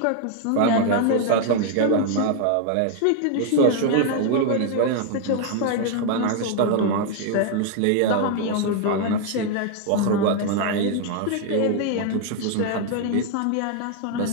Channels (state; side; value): different; both; correlation 0.00